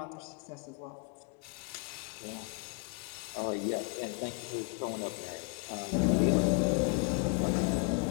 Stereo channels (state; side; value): quieter; right; 36.0 dB